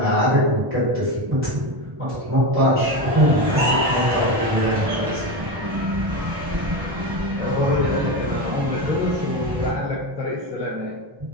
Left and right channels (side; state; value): left; late; 1.1 ms